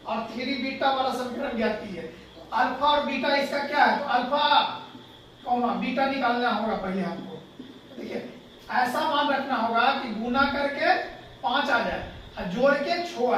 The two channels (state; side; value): identical; both; correlation 1.00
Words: और 3 बीटा वाला समीकरण ज्ञात कीजिए। तो अल्फा और बीटा इसका क्या है? तो अल्फा कौन बीटा निकालना होगा पहले हमको। देखिए, ऐसा मान रखना होगा कि गुना करके 5 आ जाए और जोड़ के 6